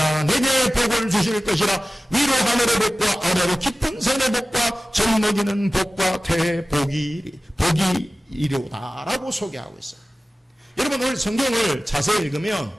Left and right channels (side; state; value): both; normal; correlation 0.96